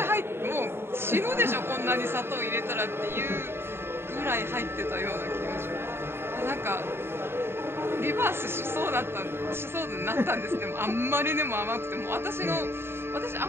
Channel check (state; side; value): late; left; 0.11 ms